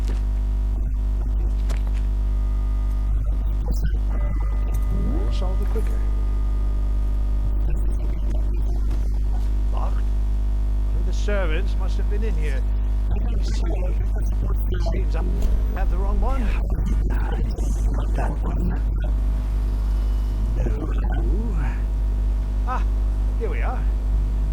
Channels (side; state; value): both; identical; correlation 1.00